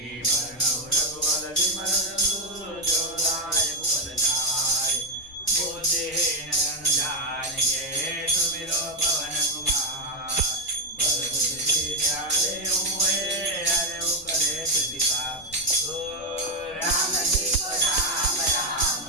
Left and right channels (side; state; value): left; noise; rumble, 23 dB below the sound